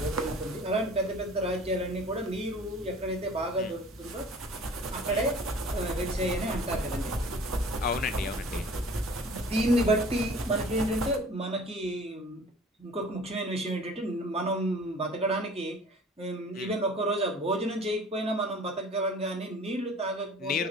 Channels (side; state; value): both; normal; correlation 0.47